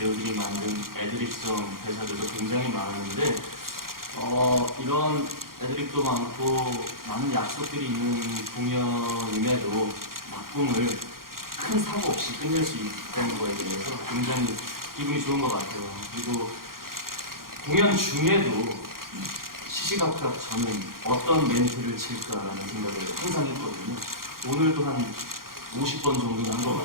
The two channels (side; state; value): left; late; 0.92 ms